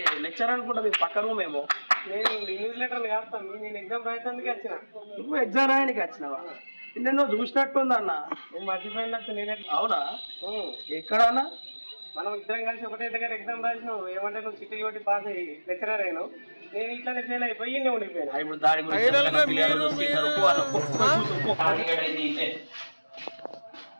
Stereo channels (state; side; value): inverted; both; correlation -1.00